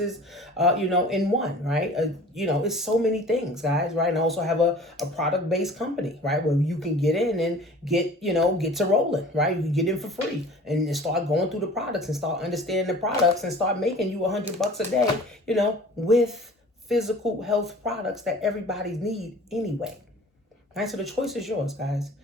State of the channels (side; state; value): both; normal; correlation 0.45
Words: in one, right? It's so many things, guys, right? And I also have a product-based company, right, where you can get in and get to rolling, right? You can get in for free and start going through the products and start understanding the products and start making you $100 a day, with physical health products that everybody need anyway. Right? So the choice is yours, guys.